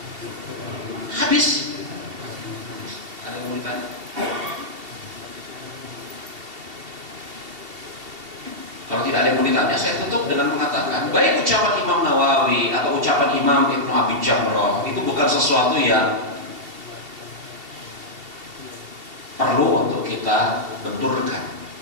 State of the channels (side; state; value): left; late; 2.7 ms